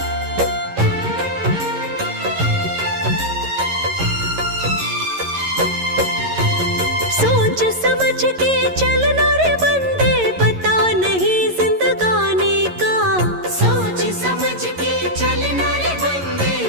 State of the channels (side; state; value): left; late; 11 ms